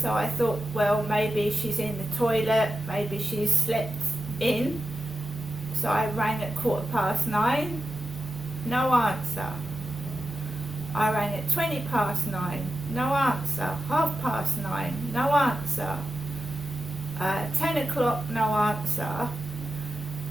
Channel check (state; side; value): normal; both; correlation 0.91